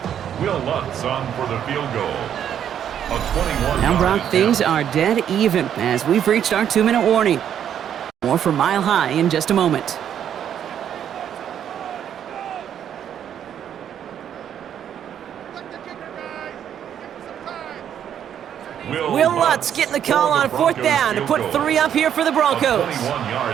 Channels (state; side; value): quieter; left; 9.4 dB